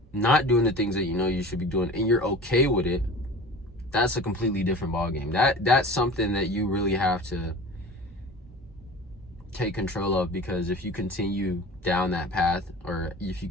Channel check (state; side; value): normal; both; correlation 0.38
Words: not doing the things that you know you should be doing and you're okay with it, that's a completely different ballgame. That's something that you really have to take control of, because if you continue down that path, or if you